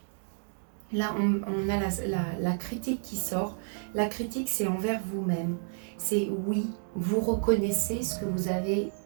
là on a la critique qui sort. La critique, c'est envers vous-même. C'est oui, vous reconnaissez ce que vous avez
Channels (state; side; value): silent; left; 58 dB below the other